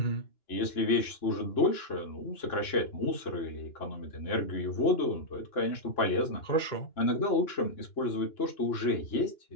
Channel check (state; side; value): late; right; 2.9 ms